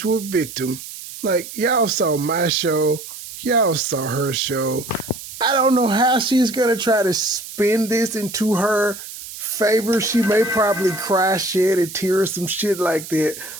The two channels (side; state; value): right; noise; hiss, 12 dB below the sound